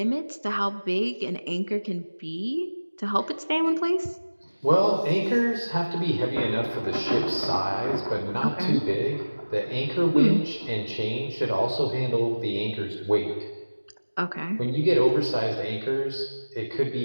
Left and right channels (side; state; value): both; inverted; correlation -1.00